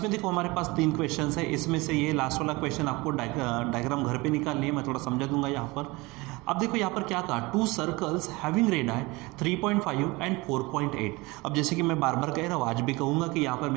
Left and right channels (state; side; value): quieter; left; 23.4 dB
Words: देखो हमारे पास 3 क्वेश्चन है। इसमें से ये लास्ट वाला क्वेश्चन आपको डायग्राम घर पे निकालनी है, मैं थोड़ा समझा दूंगा यहाँ पर। अब देखो यहाँ पर क्या कहा, 2 सर्कल्स हैविंग रेडियाई 3.5 एंड 4.8। अब जैसे कि मैं बार बार कह रहा हूँ, आज भी कहूँगा कि यहाँ पर